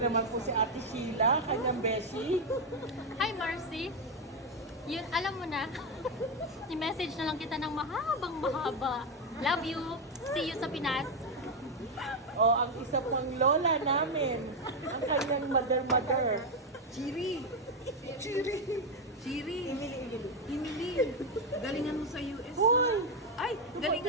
po si Ate Sheila, kanyang beshi. Hi, Marcy. Yun, alam mo na. I-message na lang kita ng mahaba. Love you. See you sa Pinas. O, ang isa pang lola namin, ang kanyang mother. Chiri. Emily, galingan mo sa US Hoy! ha? Ay,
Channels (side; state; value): both; normal; correlation 0.06